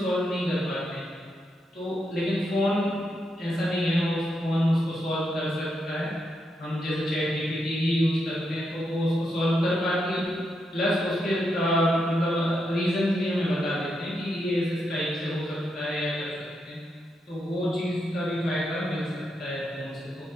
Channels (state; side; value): normal; both; correlation 0.82